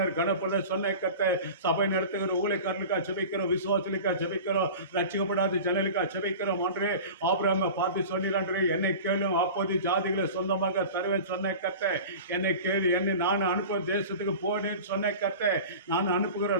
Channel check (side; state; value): both; inverted; correlation -0.35